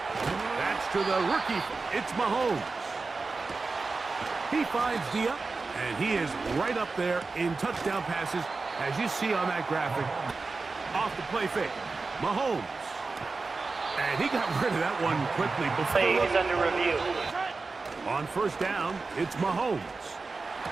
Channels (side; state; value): left; quieter; 4.0 dB